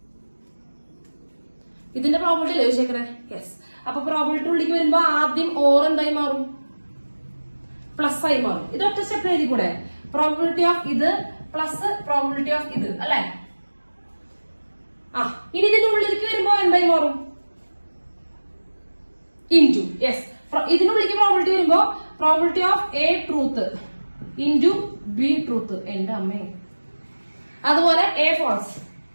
ഇതിന്റെ പ്രോബിലിറ്റി അല്ലേ ചോദിച്ചേക്കണേ? യെസ്. അപ്പൊ പ്രോബിലിറ്റി ഉള്ളിലേക്ക് വരുമ്പോ ആദ്യം ഓർ എന്തായി മാറും? പ്ലസ് ആയി മാറും. ഇത് ഒറ്റ സ്റ്റെപ്പ് എഴുതി കൂടെ, പ്രോബിലിറ്റി ഓഫ് ഇത് പ്ലസ് പ്രോബിലിറ്റി ഓഫ് ഇത് അല്ലെ. ഇനി ഇതിന്റെ ഉള്ളിലേക്ക് വരുമ്പോ എന്തായി മാറും? ഇൻറ്റു. യെസ്. ഇതിനുള്ളിലേക്ക് പ്രോബിലിറ്റി വരുമ്പോ probability of A truth into B truth. എന്റെ അമ്മേ. അതുപോലെ A false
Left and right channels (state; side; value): inverted; both; correlation -1.00